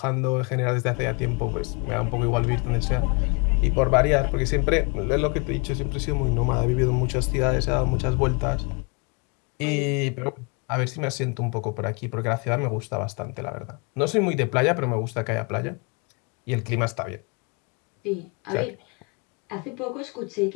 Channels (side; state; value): right; quieter; 33.1 dB